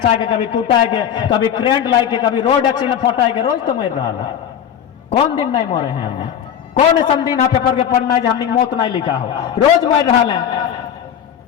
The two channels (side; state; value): right; quieter; 9.1 dB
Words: के कभी टूटा है के कभी करेंट लाए के कभी रोड एक्सीडेंट फटा के रोज तो मर रहा है कौन दिन नहीं मरे हैं हमने कौन ऐसा दिन है पेपर के पन्ना है हमने मौत नहीं लिखा हो रोज मर रहा है